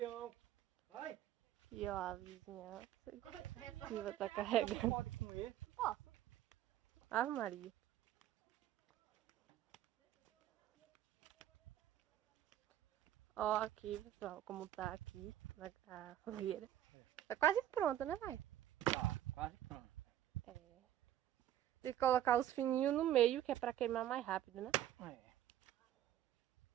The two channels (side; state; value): left; quieter; 12.1 dB